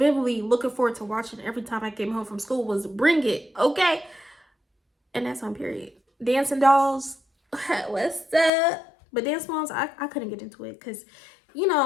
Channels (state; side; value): drops out; right; at 8.5 s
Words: looking forward to watching every time I came home from school was Bring It, okay? And that's on period. Dancing Dolls, what's up? But Dance Moms, I couldn't get into it because,